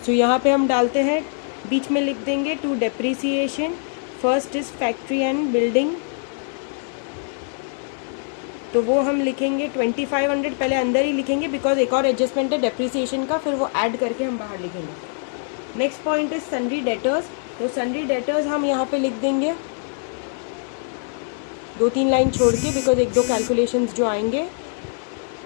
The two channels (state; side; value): silent; right; digital silence